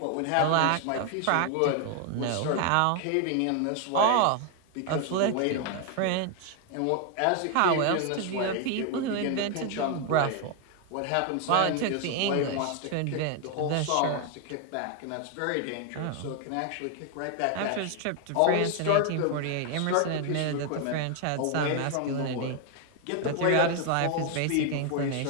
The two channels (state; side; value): different; both; correlation 0.01